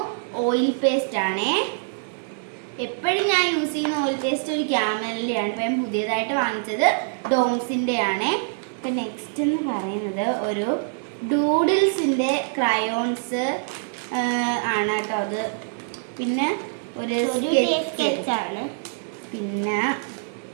ഓയിൽ പേസ്റ്റ് ആണ്. എപ്പോഴും ഞാൻ യൂസ് ചെയ്യുന്ന ഓയിൽ പേസ്റ്റ് ഒരു ക്യാമലിൻ്റെ ആണ്. ഇപ്പം ഞാൻ പുതിയതായിട്ട് വാങ്ങിച്ചത് ഡോംസിൻ്റെ ആണ്. ഇപ്പം നെക്സ്റ്റ് എന്ന് പറയുന്നത് ഒരു ഡൂഡിൽസിൻ്റെ ക്രയോൺസ് ആണ് കേട്ടോ അത്. പിന്നെ ഒരു സ്കെച്ചാണ്. പിന്നെ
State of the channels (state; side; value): silent; left; 62 dB below the other